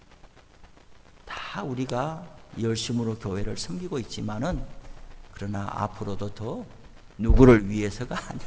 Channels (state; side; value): identical; both; correlation 1.00